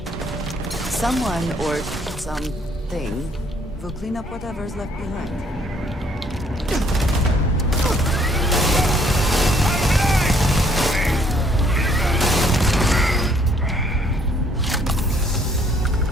Someone or something will clean up whatever's left behind.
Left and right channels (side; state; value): both; normal; correlation 0.64